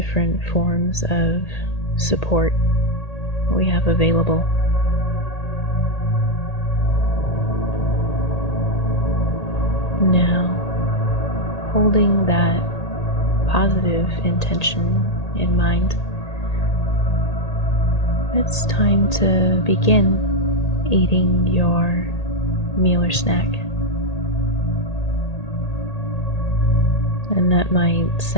forms of support we have available. Now, holding that positive intention in mind, it's time to begin eating your meal or snack. And that might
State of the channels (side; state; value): right; late; 1.8 ms